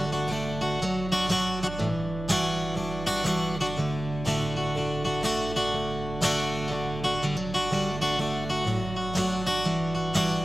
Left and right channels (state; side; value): noise; right; hum, 9 dB below the sound